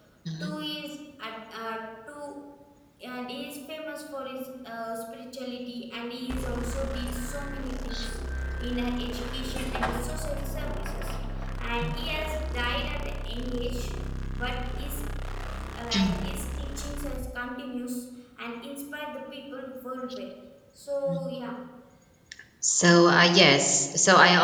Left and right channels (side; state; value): both; identical; correlation 1.00